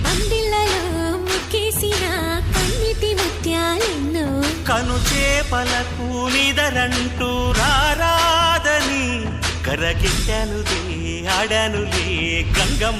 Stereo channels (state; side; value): identical; both; correlation 1.00